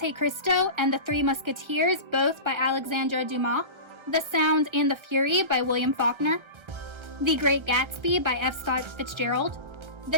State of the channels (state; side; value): late; left; 1.3 ms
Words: Cristo and the Three Musketeers, both by Alexandre Dumas, The Sound and the Fury by William Faulkner, The Great Gatsby by F. Scott Fitzgerald,